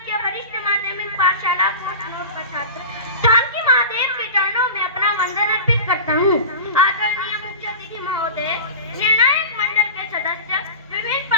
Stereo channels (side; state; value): both; inverted; correlation -0.32